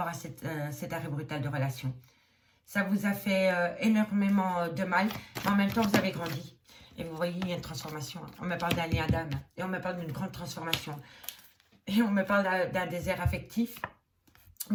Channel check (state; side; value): identical; both; correlation 1.00